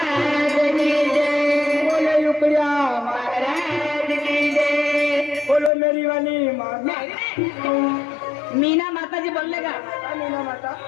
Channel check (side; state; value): right; drops out; at 5.7 s